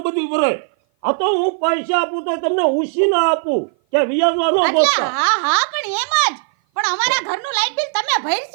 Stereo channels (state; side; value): silent; left; 56 dB below the other